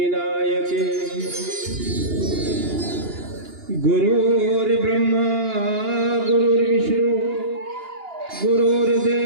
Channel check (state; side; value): late; left; 2.9 ms